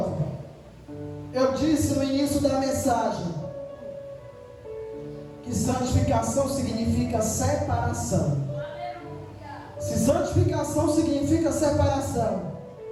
eu disse no início da mensagem que santificação significa separação. Se santificação significa separação,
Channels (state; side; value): identical; both; correlation 1.00